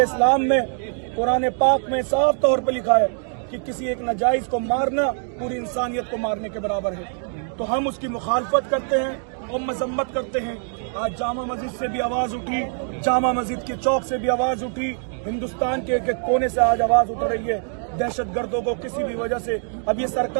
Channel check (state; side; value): silent; left; 57 dB below the other